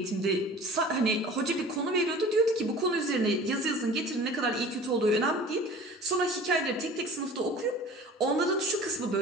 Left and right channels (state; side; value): normal; both; correlation 0.43